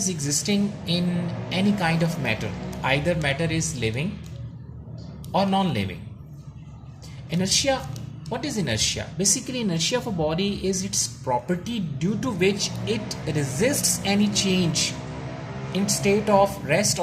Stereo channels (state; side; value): identical; both; correlation 1.00